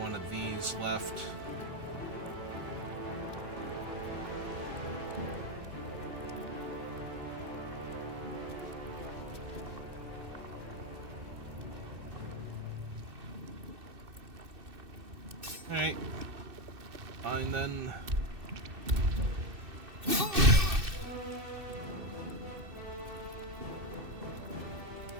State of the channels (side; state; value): left; late; 2.6 ms